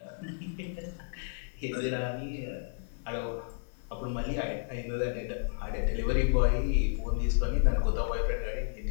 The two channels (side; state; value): right; silent; digital silence